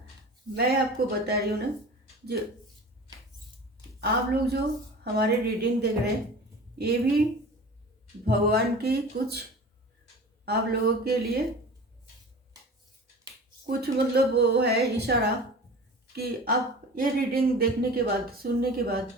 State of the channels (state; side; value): normal; both; correlation 0.37